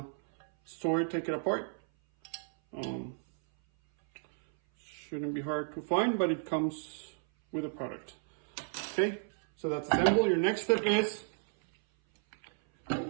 store it, take it apart. Shouldn't be hard to find, but it comes with a product. Okay, so that's assembled. Your next step is,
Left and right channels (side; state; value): left; silent; 56 dB below the other